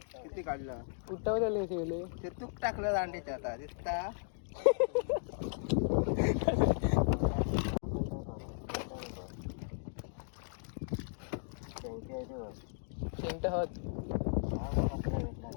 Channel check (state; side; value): silent; right; digital silence